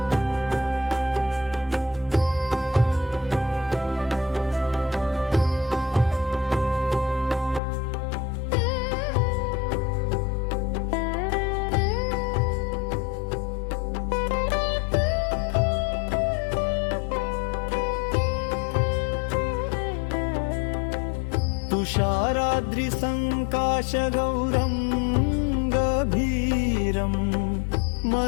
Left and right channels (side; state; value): right; drops out; at 7.6 s